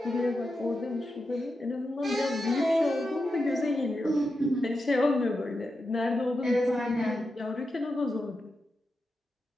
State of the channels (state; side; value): normal; both; correlation 0.89